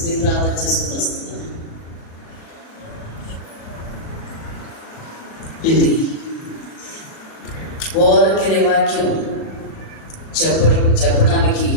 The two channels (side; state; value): right; late; 37 ms